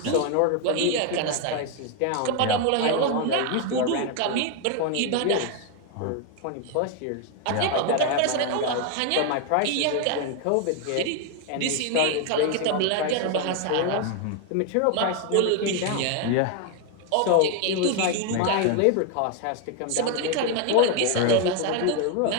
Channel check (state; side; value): different; both; correlation 0.01